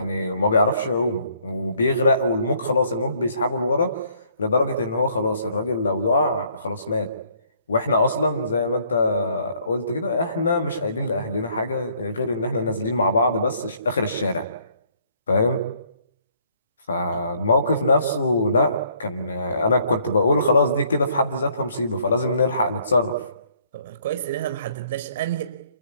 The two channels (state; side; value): inverted; both; correlation -0.64